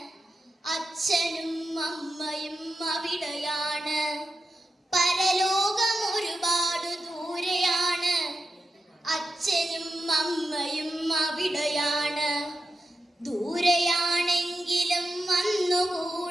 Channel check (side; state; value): both; normal; correlation 0.89